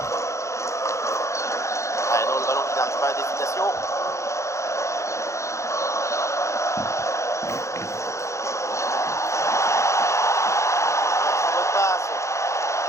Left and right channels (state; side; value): late; right; 0.14 ms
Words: Ah non, le ballon qui n'arrive pas à destination. Très bonne passe.